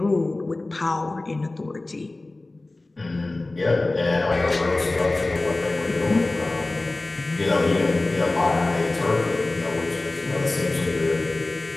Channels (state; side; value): quieter; right; 3.0 dB